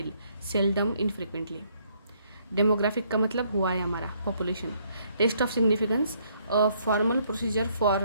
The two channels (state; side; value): inverted; both; correlation -0.69